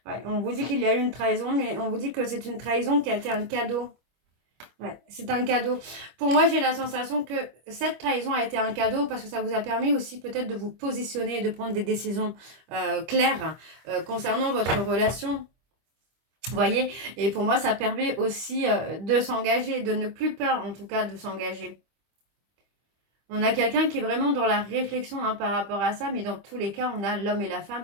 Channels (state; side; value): late; left; 25 ms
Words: Ouais, on vous dit qu'il y a eu une trahison, mais on vous dit que c'est une trahison qui a été un cadeau. Ouais, c'est un cadeau. Pour moi, j'ai la sensation que cette trahison a été un cadeau parce que ça vous a permis aussi peut-être de vous positionner et de prendre des décisions claires concernant votre relation. Vous voyez? Et pour moi, ça permet aussi de s'engager, de ne plus peur en tout cas de s'engager. On a quelqu'un qui est vraiment dans la réflexion hein, par rapport à ça, mais dans tous les cas, on a l'homme et la